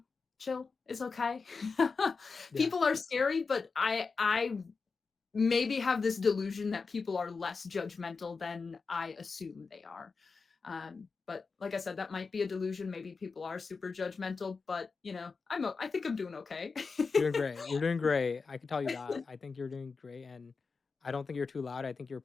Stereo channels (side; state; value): right; quieter; 4.7 dB